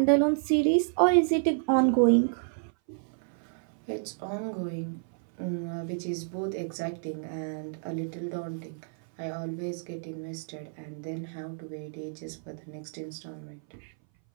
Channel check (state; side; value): silent; left; 58 dB below the other